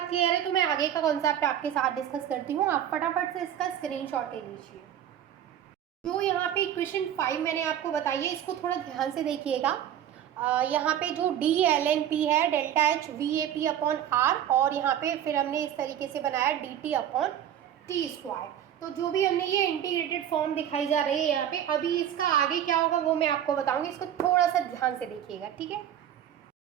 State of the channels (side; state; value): left; quieter; 10.4 dB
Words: क्लियर है, तो मैं आगे का कॉन्सेप्ट आपके साथ डिस्कस करती हूँ, आप फटाफट से इसका स्क्रीनशॉट ले लीजिए। जो यहाँ पे इक्वेशन 5 मैंने आपको बताई है, इसको थोड़ा ध्यान से देखिएगा। यहाँ पे जो DlnP है, delta H VAP upon R, और यहाँ पे फिर हमने इस तरीके से बनाया DT अपॉन T²। तो जो भी हमने ये इंटीग्रेटेड फॉर्म दिखाई जा रही है यहाँ पे, अभी इसका आगे क्या होगा वो मैं आपको बताऊंगी, इसको थोड़ा सा ध्यान से देखिएगा, ठीक है।